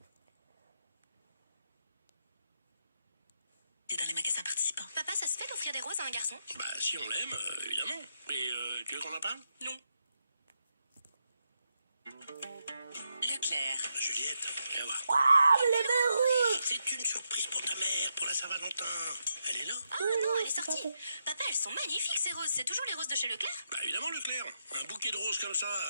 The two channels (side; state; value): both; inverted; correlation -0.83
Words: Et dans les magasins participants. Papa, ça se fait d'offrir des roses à un garçon? Bah, si on l'aime, évidemment. Mais tu veux qu'on en parle? Non. Leclerc. Juliette, viens voir. Ah, les belles roses! C'est une surprise pour ta mère, pour la Saint-Valentin. Elle est là? Oh non, elle est c'est sortie. pas fait. Papa, elles sont magnifiques ces roses, c'est toujours les roses de chez Leclerc? Bah, évidemment, Leclerc. Un bouquet de roses comme ça,